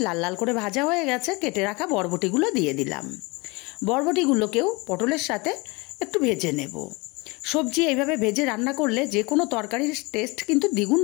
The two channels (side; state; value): right; quieter; 26.3 dB